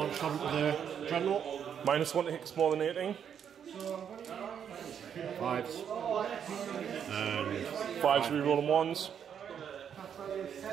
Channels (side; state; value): left; quieter; 8.2 dB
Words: travel to the Dreadnought. -1 to hit more than 18. 5s. And 5s re-rolling 1s.